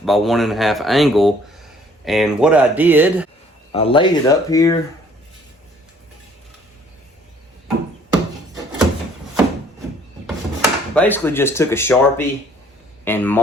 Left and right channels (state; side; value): normal; both; correlation 0.59